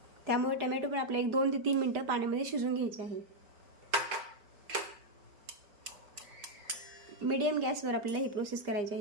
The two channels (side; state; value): left; late; 5.2 ms